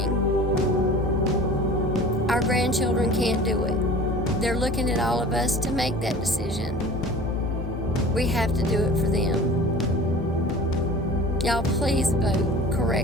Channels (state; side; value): normal; both; correlation 0.41